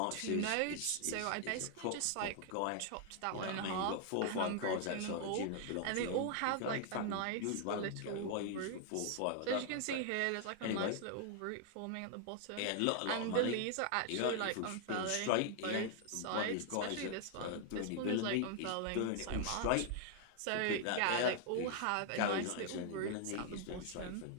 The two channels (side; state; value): both; different; correlation 0.00